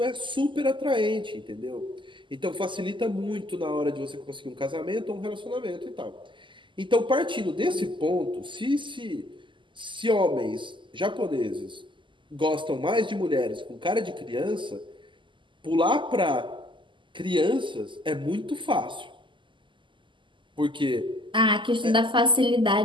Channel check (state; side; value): late; left; 0.24 ms